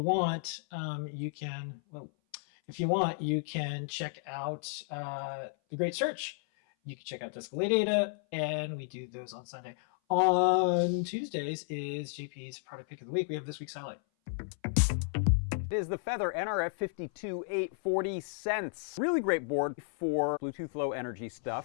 want, you can check out the great search. You can check out Ladyada, and we do those on Sunday. On Tuesdays is JP's product pick of the week. We have this week's highlight. It is the Feather NRF 52840 cents. Really great board for Bluetooth Low Energy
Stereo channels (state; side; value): silent; right; 56 dB below the other